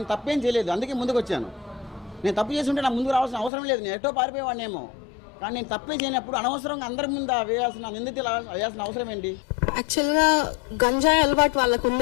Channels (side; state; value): right; drops out; at 3.5 s